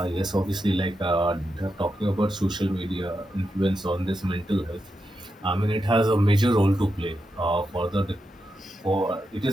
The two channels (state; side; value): normal; both; correlation 0.87